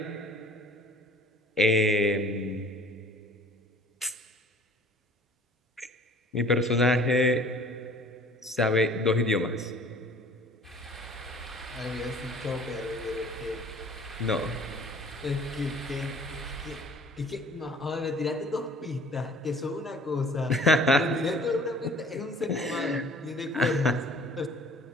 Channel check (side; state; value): both; normal; correlation 0.50